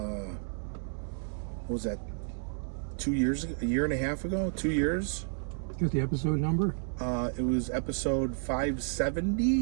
was that? 2 years ago? A year and a half ago? 2 years? Got the episode number? It was episode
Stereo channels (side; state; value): left; silent; digital silence